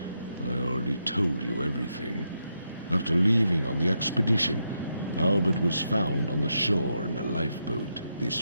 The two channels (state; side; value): inverted; both; correlation -0.83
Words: I already told you everything. After leaving on the expedition, Albert was found on the shore in a lifeboat. This